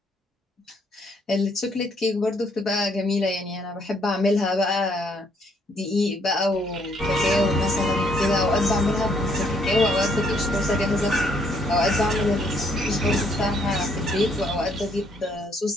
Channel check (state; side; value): normal; both; correlation 0.69